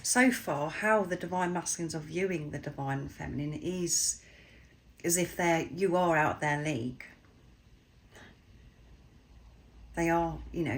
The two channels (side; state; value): both; identical; correlation 1.00